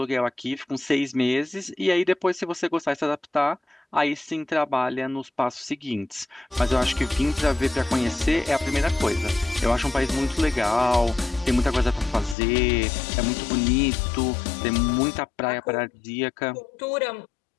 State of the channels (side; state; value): right; drops out; at 12.4 s